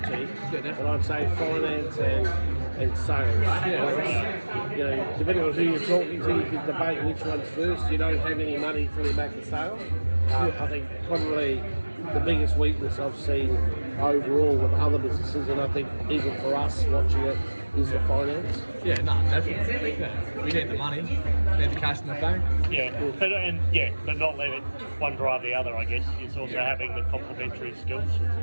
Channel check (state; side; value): inverted; both; correlation -1.00